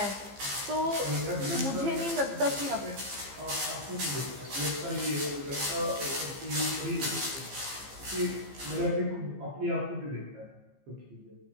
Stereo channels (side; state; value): left; late; 15 ms